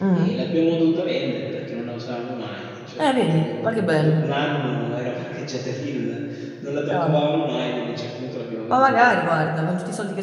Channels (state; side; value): identical; both; correlation 1.00